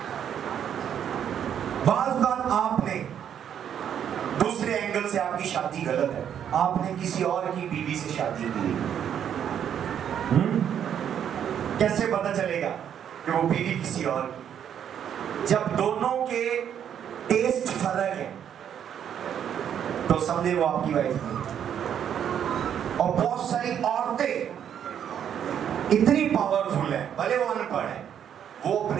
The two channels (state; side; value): quieter; left; 9.1 dB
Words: बात आपने दूसरे एंगल से, आपकी शादी गलत है, आपने किसी और की बीवी से शादी की, कैसे पता चलेगा कि वो बीवी किसी और की? जब दोनों के टेस्ट फर्क है तो समझे वो आपकी वाइफ नहीं। और बहुत सारी औरतें इतनी पावरफुल है, भले वो अनपढ़ है, वो